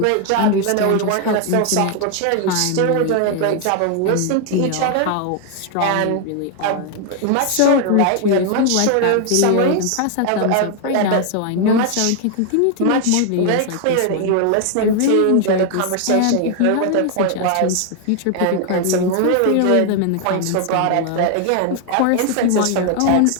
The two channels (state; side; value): different; both; correlation 0.00